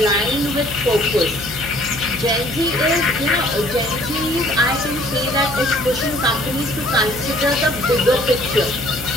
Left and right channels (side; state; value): left; noise; hum, 14 dB below the sound